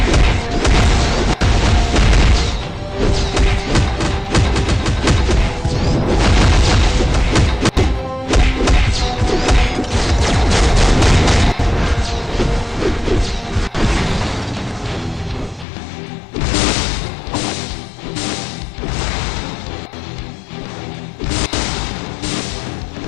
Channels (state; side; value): drops out; right; at 15.7 s